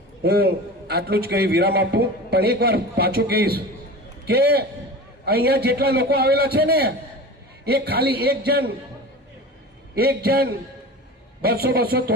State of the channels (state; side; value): normal; both; correlation 0.33